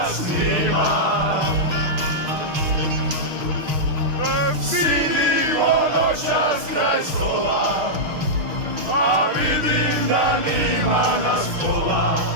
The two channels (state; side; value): late; left; 6.5 ms